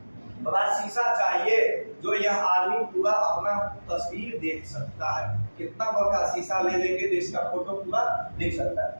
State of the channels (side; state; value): both; inverted; correlation -1.00